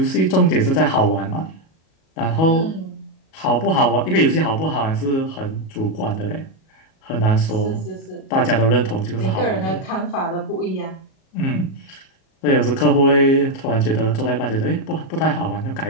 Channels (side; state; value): right; late; 37 ms